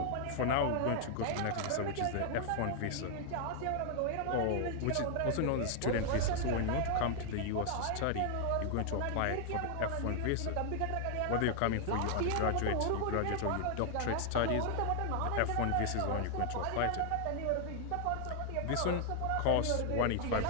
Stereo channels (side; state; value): both; different; correlation 0.00